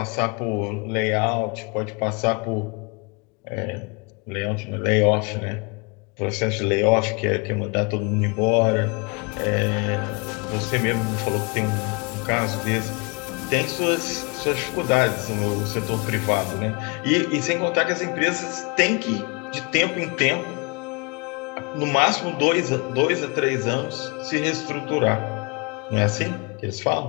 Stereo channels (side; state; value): right; quieter; 31.1 dB